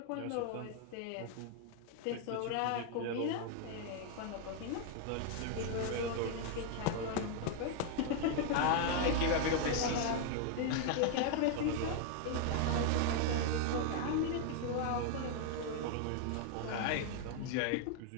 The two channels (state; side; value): different; both; correlation 0.00